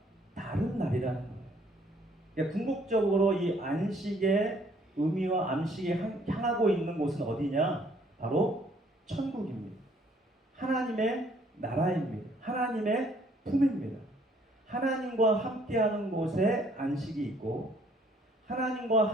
다른 날이라는 거예요. 그러니까 궁극적으로 이 안식의 의미와 안식이 향하고 있는 곳은 어디냐? 바로 천국입니다. 하나님의 나라입니다. 하나님의 품입니다. 하나님과 함께하는 곳에 안식이 있고 하나님과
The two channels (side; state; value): both; normal; correlation 0.63